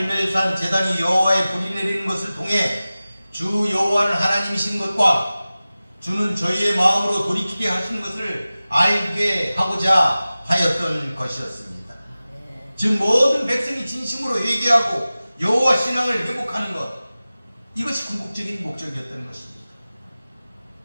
제단이 여호와의 불이 내리는 것을 통해 주 여호와는 하나님이신 것과 주는 저희의 마음으로 돌이키게 하신 것을 알게 하고자 하였던 것이었습니다. 즉 모든 백성이 진심으로 회개하고 여호와 신앙을 회복하는 것 이것이 궁극적인 목적이었던 것입니다.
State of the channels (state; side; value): inverted; both; correlation -0.97